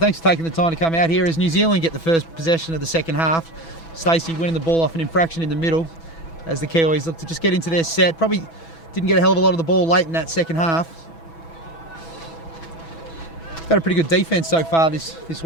for taking the time to come out here as New Zealand get the first possession of the second half. Stacey winning the ball off an infraction in the middle as the Kiwis look to just get into their set. Probably didn't get a hell of a lot of the ball late in that second half. Got a pretty good defence so far this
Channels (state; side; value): late; right; 6.1 ms